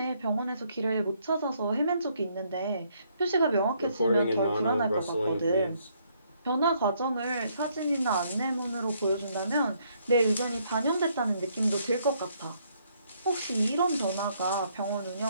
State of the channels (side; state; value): both; inverted; correlation -0.70